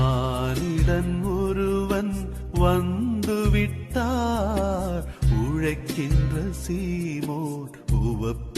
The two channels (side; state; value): both; identical; correlation 1.00